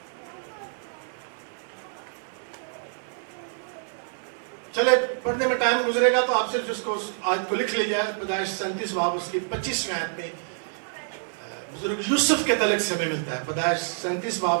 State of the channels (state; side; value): silent; left; digital silence